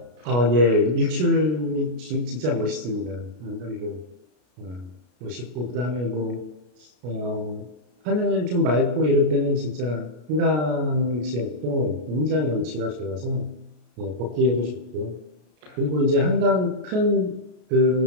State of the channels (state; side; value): late; left; 33 ms